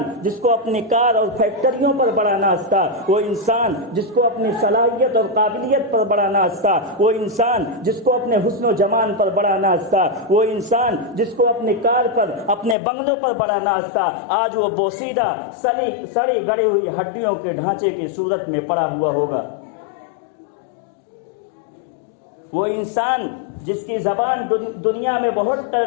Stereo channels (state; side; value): drops out; right; at 12.8 s